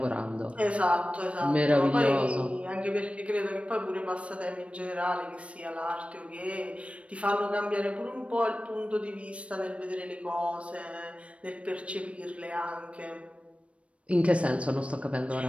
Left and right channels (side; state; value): left; late; 0.062 ms